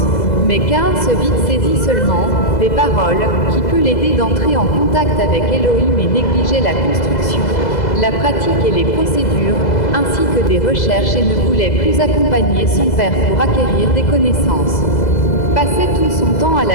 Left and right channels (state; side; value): late; right; 2.0 ms